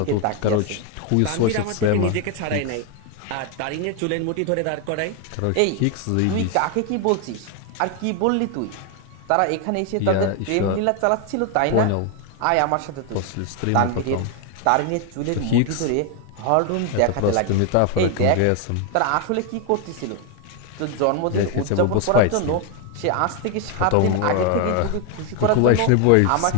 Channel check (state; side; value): different; both; correlation 0.01